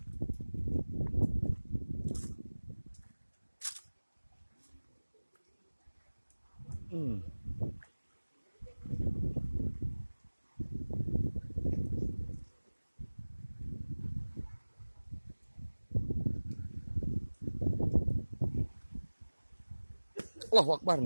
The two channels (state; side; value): inverted; both; correlation -1.00